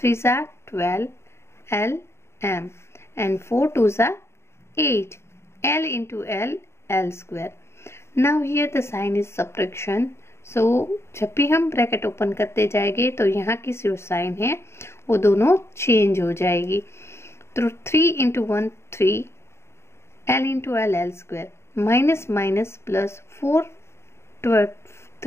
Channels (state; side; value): late; right; 0.13 ms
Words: are 12, l m, and 4 twos are 8, l into l square. Now here the sign is subtraction. सो जब भी हम bracket open करते जाएंगे तो यहाँ की जो sign है वो दोनों चेंज हो जाएगी। तो 3 into 1 3, l into l square, minus minus plus 4